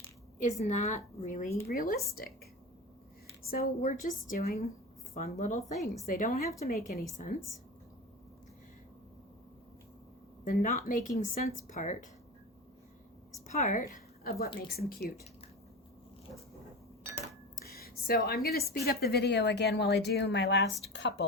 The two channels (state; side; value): normal; both; correlation 0.28